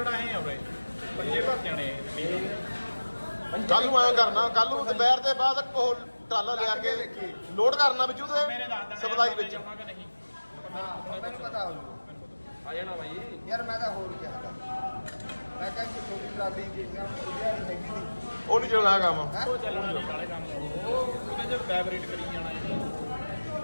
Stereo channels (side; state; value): both; inverted; correlation -1.00